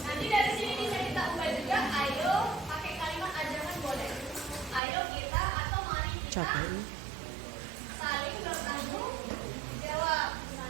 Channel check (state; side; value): drops out; left; at 4.8 s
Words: Nanti dari sini bisa kita ubah juga. Ayo pakai kalimat ajakan boleh. Ayo kita atau mari kita Capek. saling bertanggung jawab